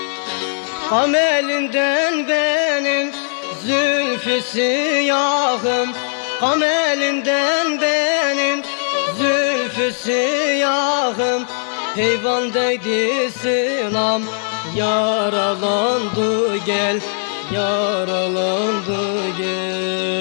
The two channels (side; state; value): right; silent; 66 dB below the other